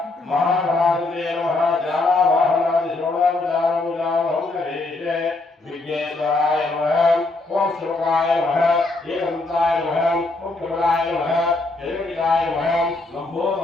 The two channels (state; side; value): quieter; right; 3.2 dB